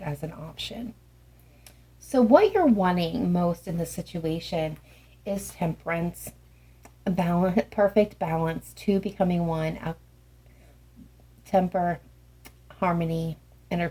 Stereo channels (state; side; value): identical; both; correlation 1.00